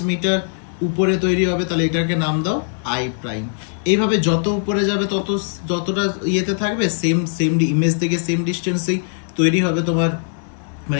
মিটার উপরে তৈরি হবে, তাহলে এটাকে নাম দাও আই প্রাইম। এইভাবে যত উপরে যাবে যতটা ইয়েতে থাকবে সেম ইমেজ থেকে সেম ডিস্টেন্সেই তৈরি হবে তোমার, মানে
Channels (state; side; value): silent; right; 62 dB below the other